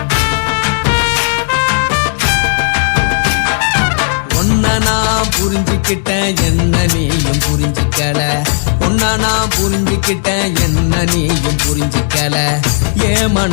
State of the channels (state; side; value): silent; right; 64 dB below the other